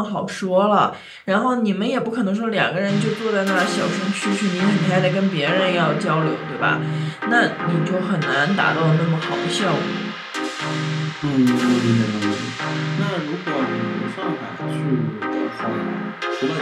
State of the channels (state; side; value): identical; both; correlation 1.00